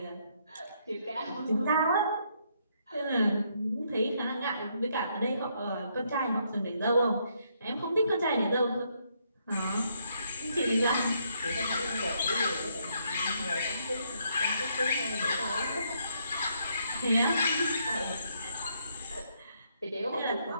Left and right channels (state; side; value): inverted; both; correlation -0.73